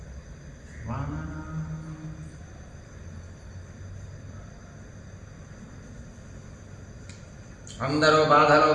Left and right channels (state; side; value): identical; both; correlation 1.00